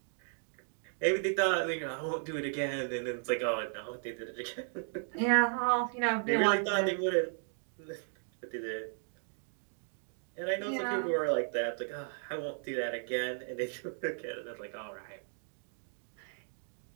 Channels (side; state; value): left; silent; digital silence